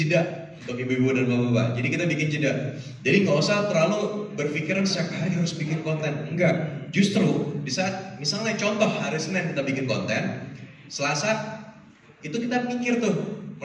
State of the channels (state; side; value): identical; both; correlation 1.00